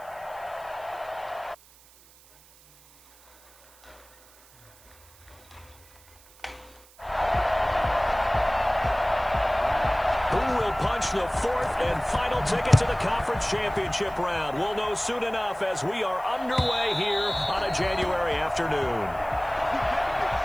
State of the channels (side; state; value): right; noise; hiss, 26 dB below the sound